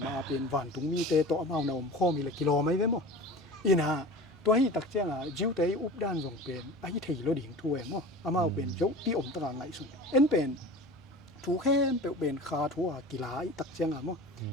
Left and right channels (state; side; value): normal; both; correlation 0.36